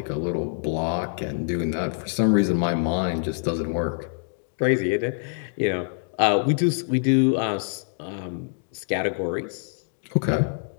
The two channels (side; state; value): right; silent; 62 dB below the other